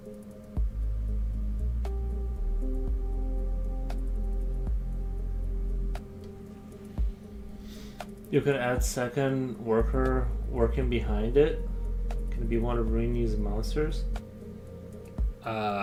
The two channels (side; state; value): both; identical; correlation 1.00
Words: You could add second worker working behind it. Can it be one of Rainey's monsters?